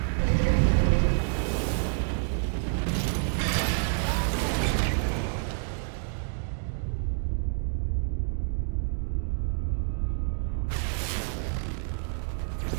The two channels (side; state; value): left; silent; digital silence